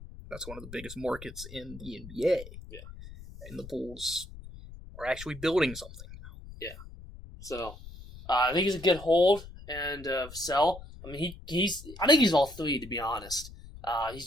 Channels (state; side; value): noise; left; rumble, 15 dB below the sound